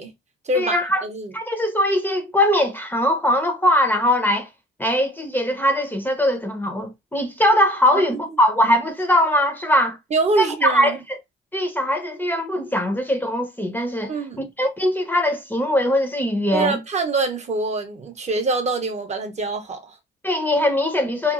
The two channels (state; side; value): normal; both; correlation 0.49